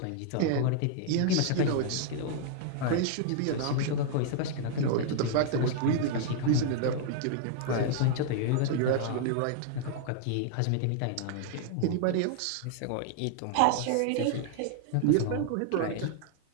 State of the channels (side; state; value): both; different; correlation -0.01